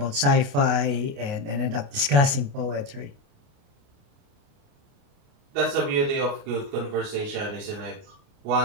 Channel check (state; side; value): late; left; 28 ms